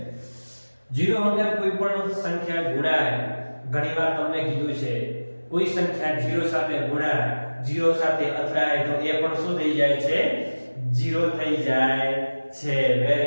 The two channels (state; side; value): inverted; both; correlation -1.00